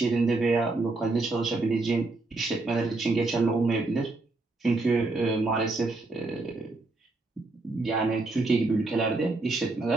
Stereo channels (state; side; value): quieter; left; 3.3 dB